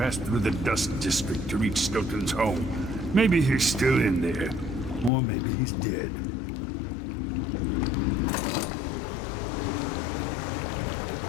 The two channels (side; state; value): right; drops out; at 5.1 s